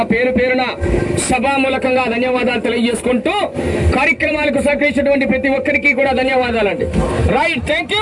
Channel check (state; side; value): identical; both; correlation 1.00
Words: పేరు పేరున సభామూలకంగా ధన్యవాదాలు తెలియజేసుకుంటూ కార్యక్రమాలకు సహకరించినటువంటి ప్రతి ఒక్కరికి కూడా ధన్యవాదాలండి. Right, thank